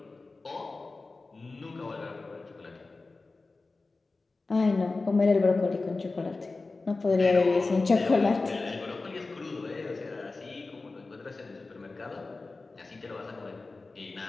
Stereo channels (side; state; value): right; quieter; 3.6 dB